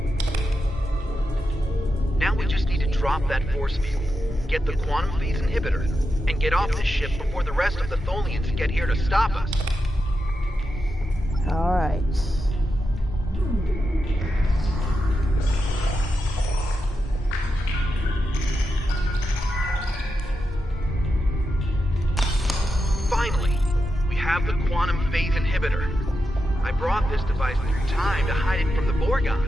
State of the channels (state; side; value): normal; both; correlation 0.88